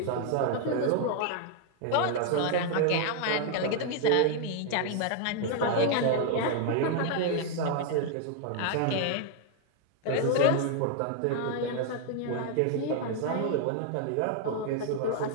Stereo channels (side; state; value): both; different; correlation 0.00